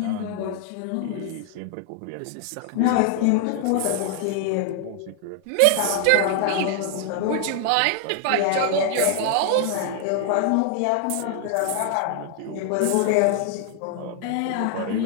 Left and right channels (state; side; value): different; both; correlation 0.00